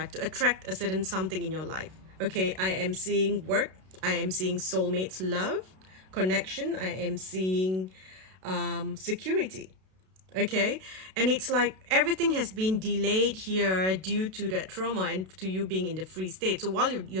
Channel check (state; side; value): late; left; 32 ms